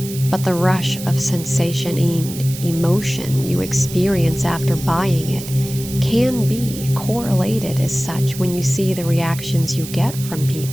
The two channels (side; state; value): right; noise; hiss, 12 dB below the sound